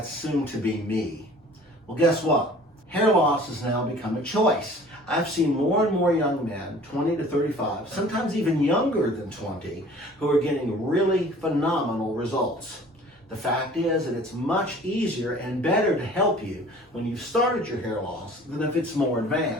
soon to be me. Well, guess what? Hair loss has now become a choice. I've seen more and more young men, 20 to 35, sometimes even younger than 20, who are getting really phenomenal results. The fact is that it's much easier and better to help you when you've started your hair loss than if it's more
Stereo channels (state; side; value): normal; both; correlation 0.48